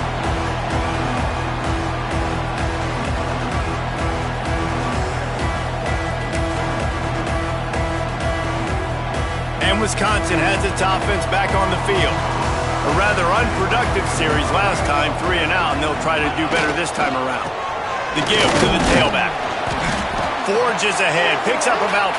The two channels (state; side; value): identical; both; correlation 1.00